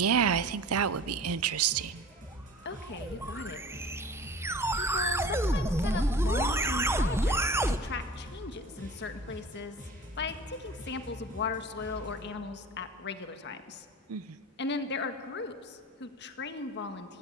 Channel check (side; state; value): both; normal; correlation 0.39